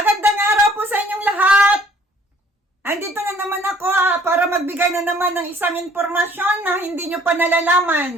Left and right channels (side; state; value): both; normal; correlation 0.58